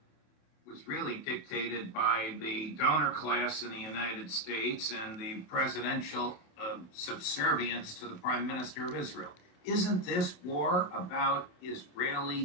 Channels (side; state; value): right; late; 28 ms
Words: was really dictated by the donor class in the United States and the presidential subservience to the Prime Minister of Israel. Isn't this war about